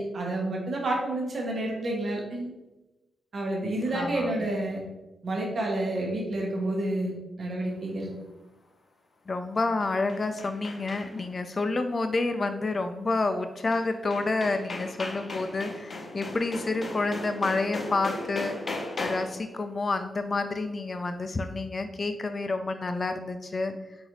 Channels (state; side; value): normal; both; correlation 0.87